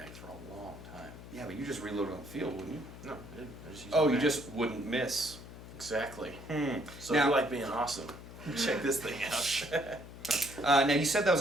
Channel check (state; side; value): noise; left; hum, 14 dB below the sound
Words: for a long time. Yeah, but you just reload on the field, wouldn't you? No, I didn't. I just used Oh, the you mag. just wouldn't miss. Exactly. So Now, if you like being awesome, check this thing out. now, you said that was